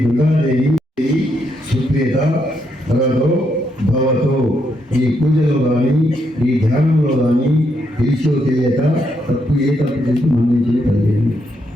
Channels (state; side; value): normal; both; correlation 0.78